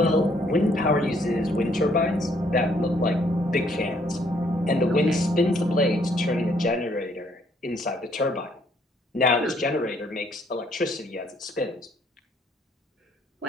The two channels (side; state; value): both; normal; correlation 0.67